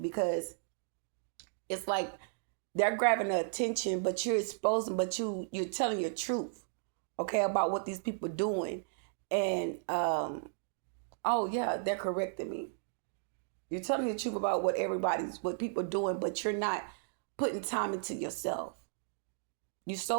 it's like they're grabbing the attention, but you're exposing, but you're telling your truth, okay, about what these people doing. And oh yeah, they're correcting me. You're telling the truth about what people doing, but you're not putting time into yourself. You're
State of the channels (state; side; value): silent; left; digital silence